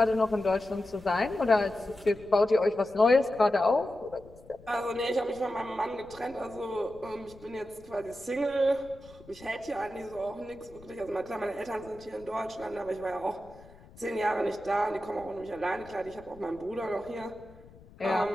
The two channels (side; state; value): left; noise; rumble, 22 dB below the sound